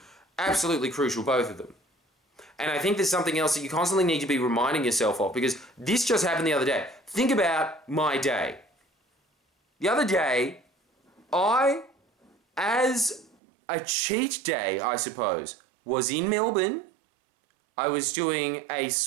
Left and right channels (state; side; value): drops out; left; at 13.4 s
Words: Absolutely crucial, both of them. And I think there's something else that you constantly need to be reminding yourself of, because this just happened the other day. Think about my day. The other day, I, as a cheat day, I suppose, was in Melbourne. I was doing a